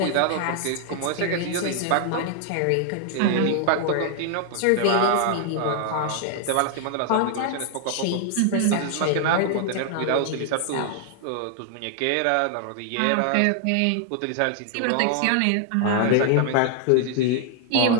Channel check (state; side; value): different; both; correlation 0.00